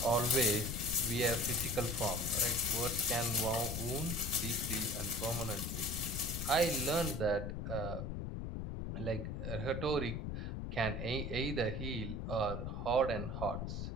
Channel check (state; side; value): noise; left; rumble, 3 dB below the sound